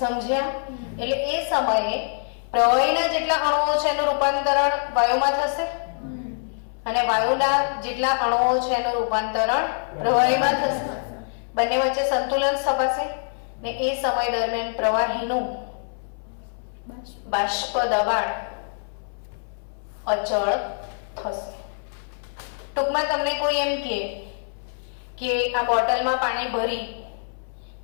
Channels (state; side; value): silent; right; 61 dB below the other